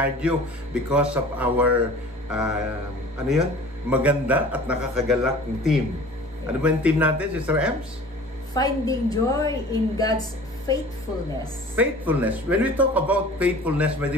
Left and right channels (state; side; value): normal; both; correlation 0.44